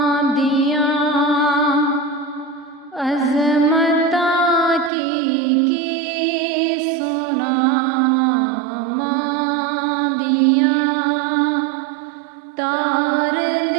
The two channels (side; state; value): left; drops out; at 4.9 s